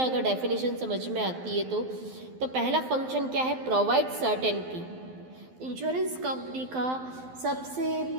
अगर डेफिनेशन समझ में आती है तो पहला फंक्शन क्या है? Provide certainty. इंश्योरेंस कंपनी का सबसे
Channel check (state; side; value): late; left; 12 ms